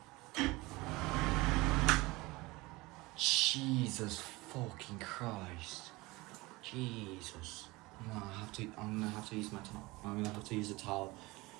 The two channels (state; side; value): quieter; left; 22.0 dB